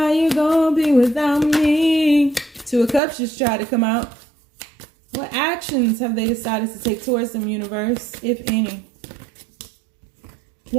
you gonna be without me. 2 of Cups just tried to come out. What actions have they decided to take towards them, universe, if any?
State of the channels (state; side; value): drops out; left; at 3.0 s